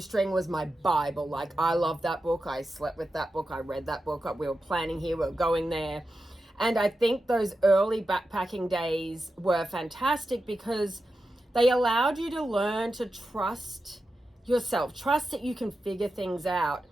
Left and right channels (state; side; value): normal; both; correlation 0.90